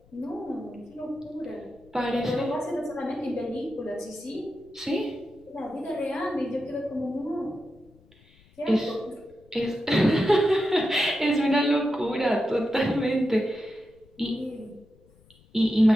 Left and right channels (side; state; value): left; noise; rumble, 29 dB below the sound